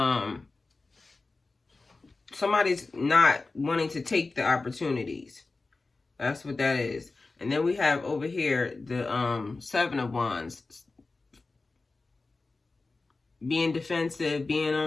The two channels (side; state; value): right; quieter; 3.6 dB